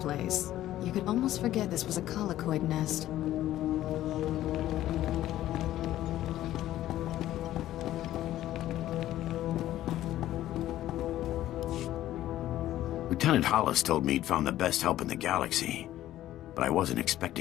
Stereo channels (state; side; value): quieter; right; 13.7 dB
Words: You could almost forget this was a colicoid nest. Lieutenant Hollis told me he'd found the best help in the galaxy, but I wasn't